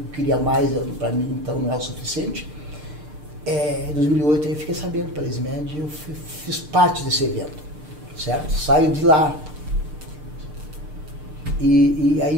eu queria mais, para mim então não é o suficiente. Em 2008 eu fiquei sabendo pela SMED e eu fiz parte desse evento, certo? Saio de lá. E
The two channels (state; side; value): late; left; 6.6 ms